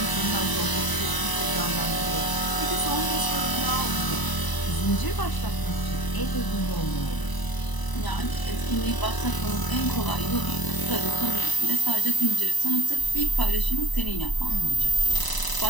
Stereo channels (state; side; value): late; right; 1.0 ms